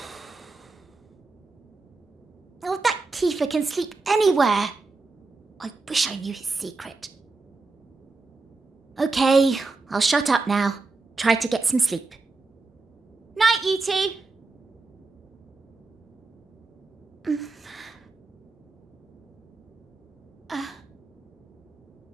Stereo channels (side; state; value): left; quieter; 3.7 dB